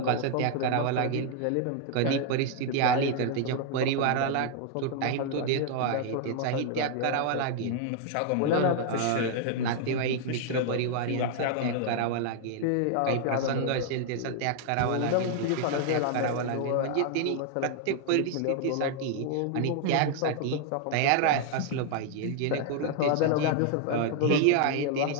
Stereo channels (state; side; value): different; both; correlation 0.00